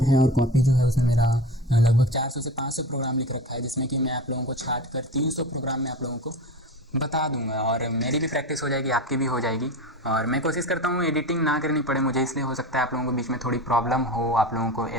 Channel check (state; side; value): normal; both; correlation 0.29